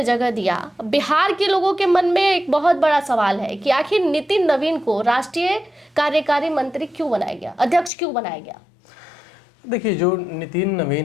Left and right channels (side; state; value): right; drops out; at 7.9 s